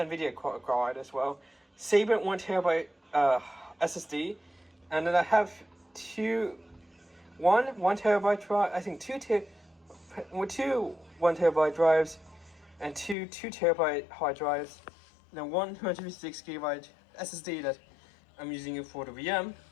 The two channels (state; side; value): drops out; right; at 13.2 s